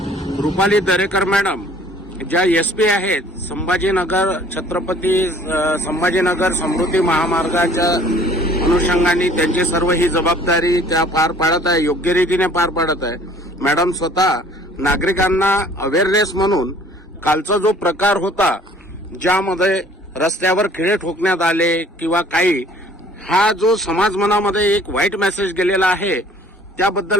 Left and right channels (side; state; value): both; normal; correlation 0.54